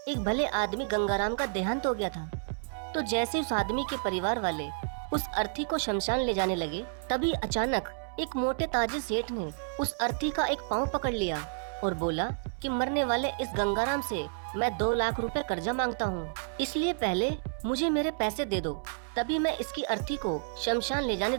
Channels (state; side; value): silent; left; 58 dB below the other